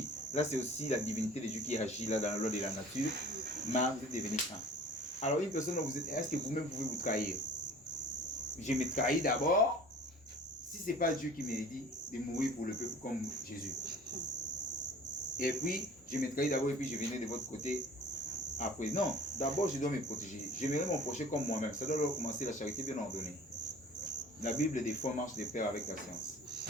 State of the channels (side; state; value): both; normal; correlation 0.46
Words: Là, c'est aussi la divinité de Dieu qui agit là dans la loi de la nature. Mais vous êtes devenu un. Alors une personne, est-ce que vous-même pouvez vous trahir? Je me trahis d'abord. Si ce n'est pas Dieu qui m'a dit de mourir pour le peuple comme Jésus. Et puis, je me trahis d'abord et puis je venais de votre côté après. Non, d'abord je dois me protéger. J'aimerais mon prochain comme moi-même. Ça doit commencer la charité bien ordonnée. La Bible des fois marche de pair avec la science.